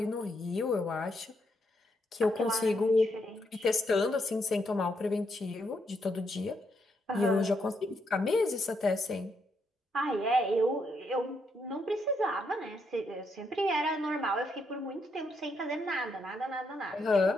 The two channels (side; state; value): both; normal; correlation 0.78